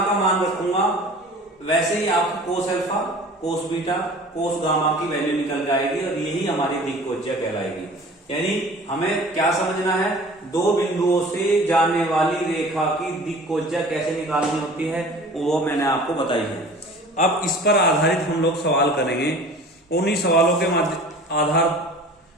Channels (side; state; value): both; normal; correlation 0.44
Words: का मान रखूंगा वैसे ही आपको कोस alpha cos beta cos gamma की वैल्यू निकल जाएगी और यही हमारी दिक्कोज्या कहलाएगी। यानी हमें क्या समझना है, दो बिंदुओं से जाने वाली रेखा की दिक्कोज्या कैसे निकालनी होती है वो मैंने आपको बताई है। अब इस पर आधारित हम लोग सवाल करेंगे, उन्हीं सवालों के आधार